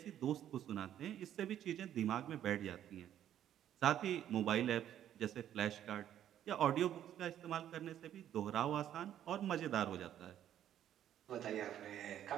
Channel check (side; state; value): left; quieter; 10.9 dB